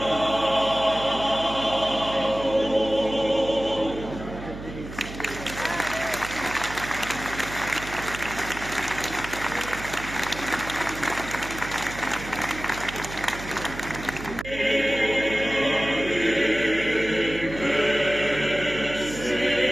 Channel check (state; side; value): noise; right; hum, 11 dB below the sound